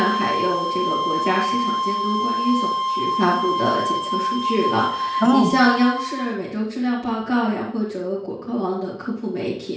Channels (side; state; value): both; identical; correlation 1.00